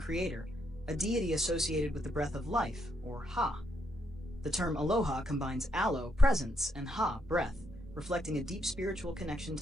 a deity associated with the breath of life, or Ha. The term aloha combines alo, presence, and Ha, breath, reflecting a deep spiritual connection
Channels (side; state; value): both; normal; correlation 0.77